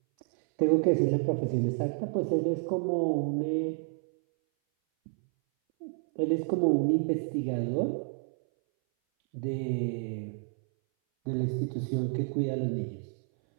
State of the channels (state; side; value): silent; left; 58 dB below the other